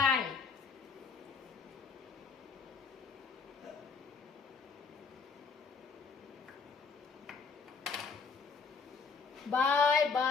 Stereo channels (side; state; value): right; quieter; 5.1 dB